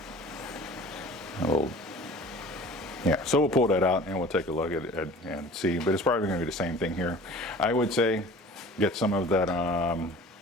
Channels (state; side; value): normal; both; correlation 0.44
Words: Yeah, so we'll pull that out and we'll take a look at it and see, but it's probably gonna be the same thing here. I would say get some of that,